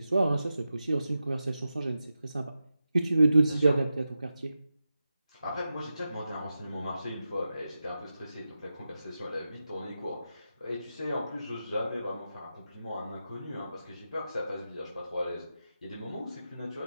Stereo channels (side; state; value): both; inverted; correlation -0.91